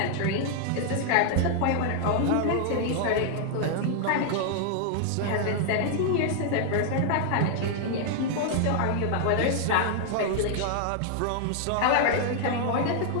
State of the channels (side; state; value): both; different; correlation 0.00